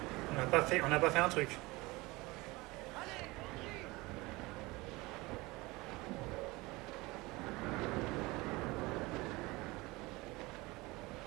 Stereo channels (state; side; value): quieter; left; 22.3 dB